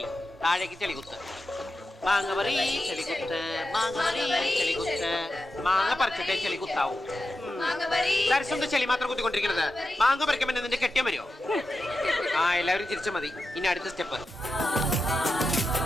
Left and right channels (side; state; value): both; normal; correlation 0.90